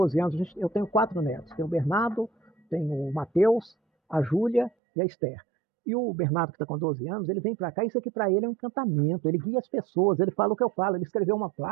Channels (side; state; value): left; drops out; at 4.7 s